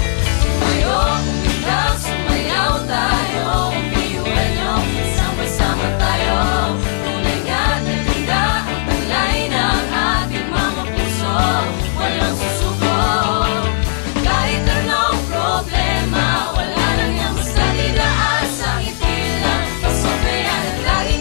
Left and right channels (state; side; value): silent; right; digital silence